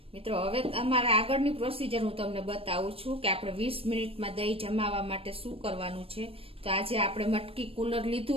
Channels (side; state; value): left; late; 0.28 ms